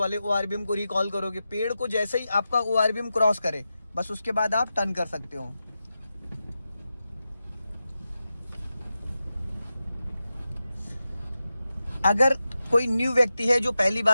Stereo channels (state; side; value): inverted; both; correlation -0.91